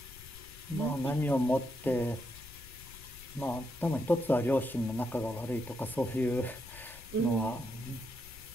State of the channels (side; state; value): left; noise; rumble, 18 dB below the sound